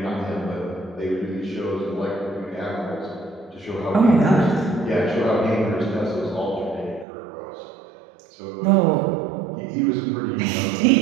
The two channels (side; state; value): left; drops out; at 7.1 s